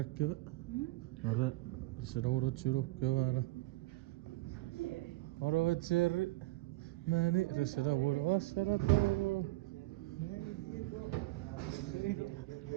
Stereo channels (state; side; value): quieter; left; 19.6 dB